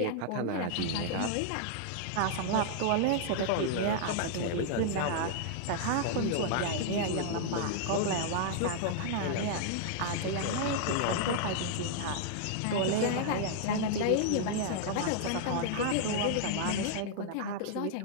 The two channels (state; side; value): different; both; correlation -0.01